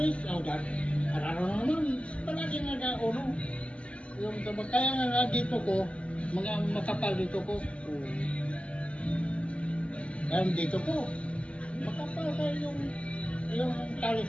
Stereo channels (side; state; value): right; late; 0.059 ms